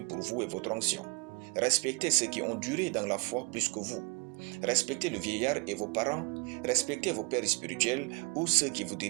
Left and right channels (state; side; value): quieter; left; 30.0 dB